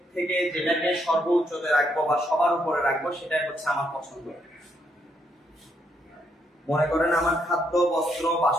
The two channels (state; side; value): normal; both; correlation 0.75